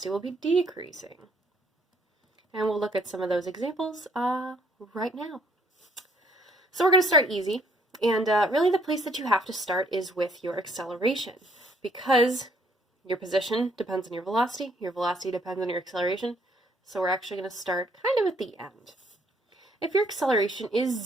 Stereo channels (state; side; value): normal; both; correlation 0.65